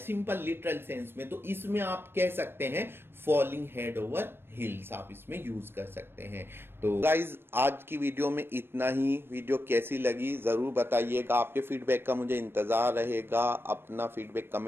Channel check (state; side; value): late; left; 0.11 ms